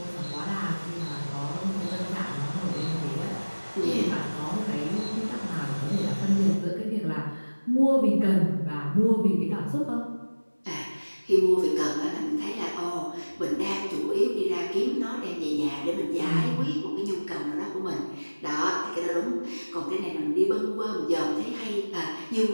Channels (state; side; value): inverted; both; correlation -1.00